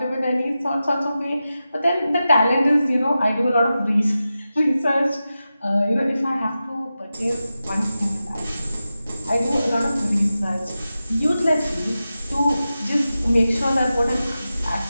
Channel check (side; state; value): both; inverted; correlation -0.93